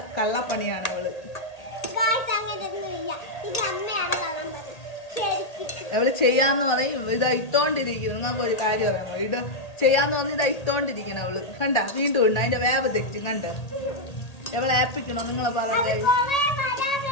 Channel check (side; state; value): right; late; 1.8 ms